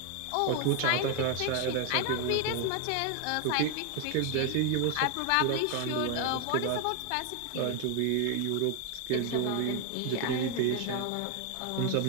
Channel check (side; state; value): both; different; correlation 0.01